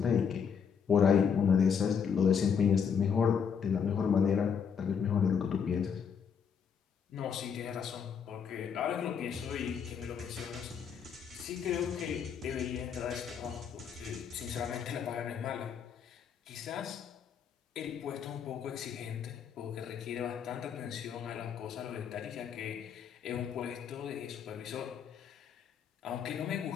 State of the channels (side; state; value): right; quieter; 7.0 dB